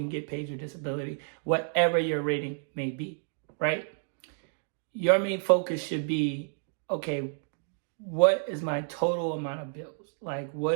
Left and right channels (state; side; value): silent; left; digital silence